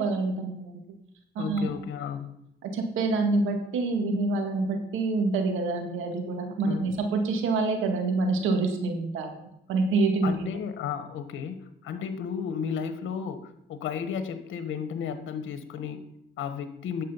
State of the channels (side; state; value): both; normal; correlation 0.55